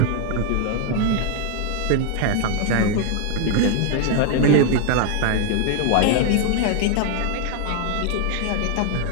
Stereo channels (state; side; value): different; both; correlation 0.00